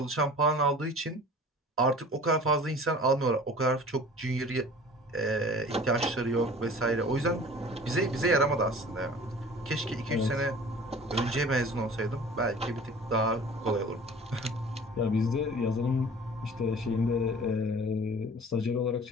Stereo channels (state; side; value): normal; both; correlation 0.44